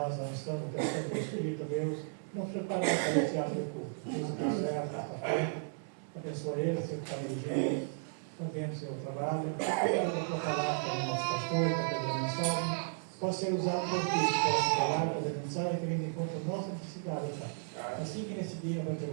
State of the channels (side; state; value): left; silent; digital silence